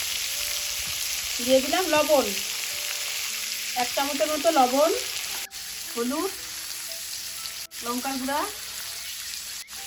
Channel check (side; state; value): both; identical; correlation 1.00